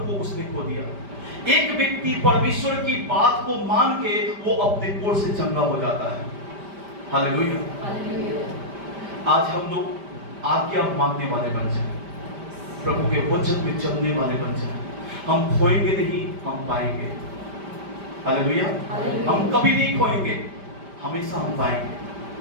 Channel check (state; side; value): late; left; 5.0 ms